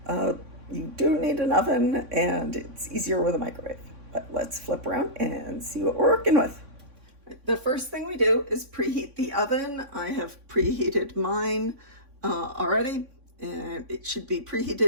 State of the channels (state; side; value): late; left; 3.6 ms